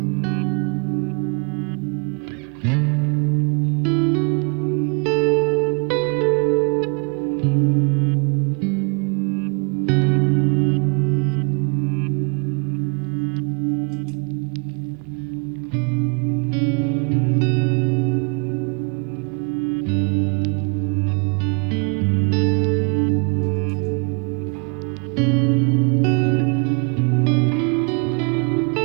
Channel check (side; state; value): left; quieter; 35.1 dB